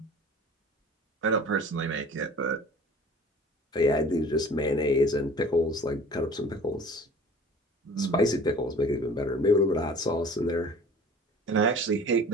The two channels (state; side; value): normal; both; correlation 0.45